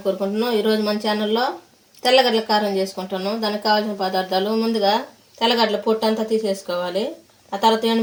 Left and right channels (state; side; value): identical; both; correlation 1.00